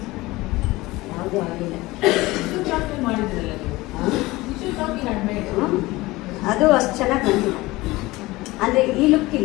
ಯಾವುದೂ ಆಗಿಲ್ಲ. ಅದು ಅಷ್ಟು ಚೆನ್ನಾಗಿ ಬಂದಿಲ್ಲ, ಅಂದರೆ ಈ ಲುಕ್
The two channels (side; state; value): right; quieter; 20.1 dB